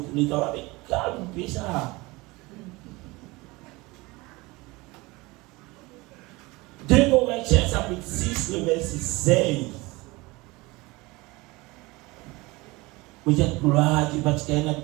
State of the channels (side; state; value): left; quieter; 22.8 dB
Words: êtes avec calme, ça. 2 Corinthiens chapitre 6, le verset 16. Vous êtes gloire parce qu'il y a